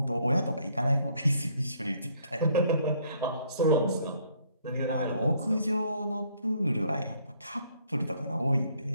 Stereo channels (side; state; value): both; inverted; correlation -0.65